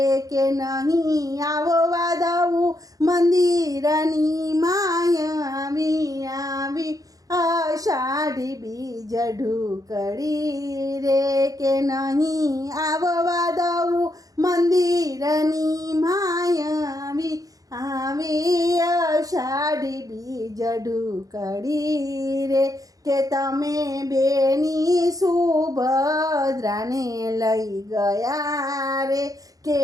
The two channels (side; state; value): left; late; 0.17 ms